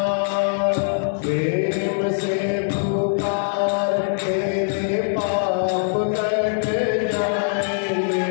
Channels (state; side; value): silent; right; 61 dB below the other